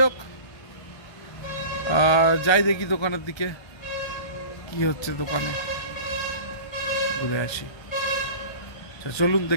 হোক, যাই দেখি দোকানের দিকে কি হচ্ছে, দোকানে ঘুরে আসি। চলুন,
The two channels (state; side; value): late; right; 1.3 ms